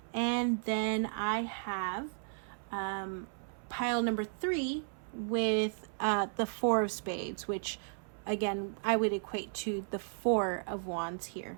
And then I have pile number 3 with the 4 of spades, which again I would equate to the 4 of wands here.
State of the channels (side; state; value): left; silent; 55 dB below the other